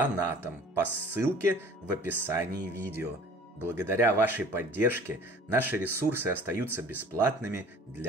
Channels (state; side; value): normal; both; correlation 0.47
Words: по ссылке в описании видео. Благодаря вашей поддержке наши ресурсы остаются бесплатными